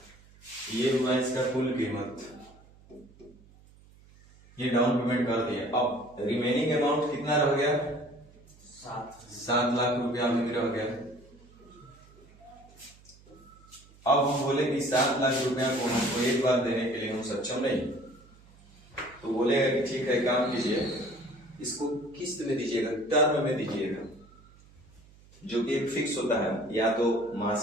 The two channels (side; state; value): right; noise; hum, 25 dB below the sound